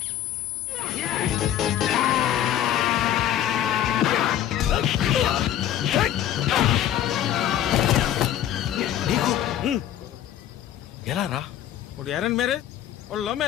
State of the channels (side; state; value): right; quieter; 11.3 dB